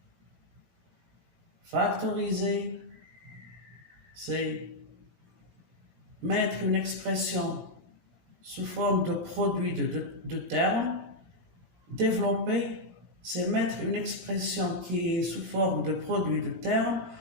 Factoriser, c'est mettre une expression sous forme de produit de termes. Développer, c'est mettre une expression qui est sous forme de produit de termes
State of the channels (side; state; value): left; late; 17 ms